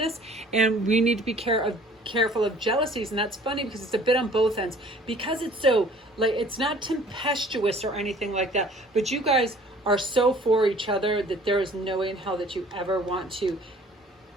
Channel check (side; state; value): both; normal; correlation 0.52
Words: and we need to be careful of jealousies. And that's funny because it's a bit on both ends because it's so like, it's not tempestuous or anything like that, but you guys are so for each other that there is no way in hell that you ever want to